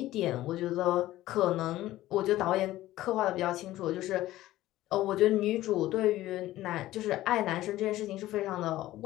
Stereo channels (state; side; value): quieter; right; 15.5 dB